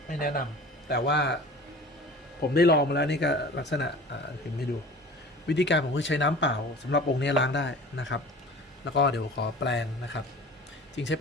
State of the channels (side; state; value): both; normal; correlation 0.40